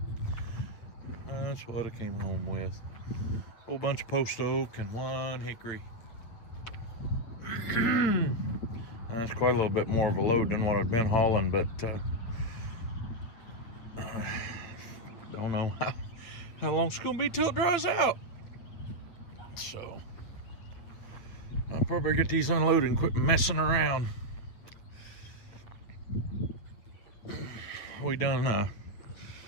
that's what I came home with. A whole bunch of post oak and one hickory. That's quite a little bit more of a load than what I've been hauling, but don't know how long it's gonna be till it dries out. So I'll probably get these unloaded and quit messing around. We kind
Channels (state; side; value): late; right; 8.4 ms